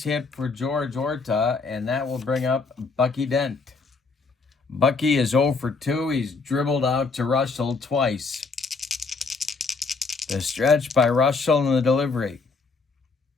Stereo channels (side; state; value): right; quieter; 4.3 dB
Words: hit for George Orta, and that will bring up Bucky Dent. Bucky is 0 for 2. He's dribbled out to Reuschel twice. The stretch by Reuschel and the delivery.